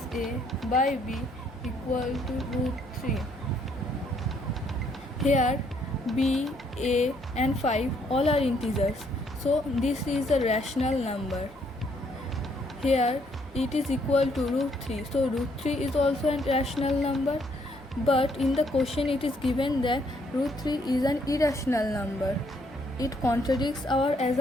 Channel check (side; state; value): both; normal; correlation 0.69